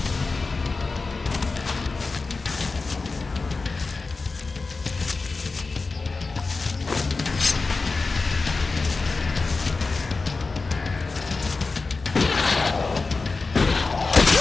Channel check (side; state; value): right; quieter; 3.9 dB